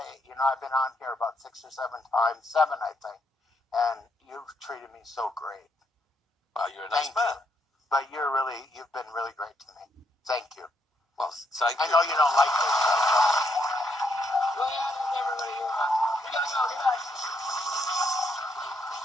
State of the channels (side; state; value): both; normal; correlation 0.75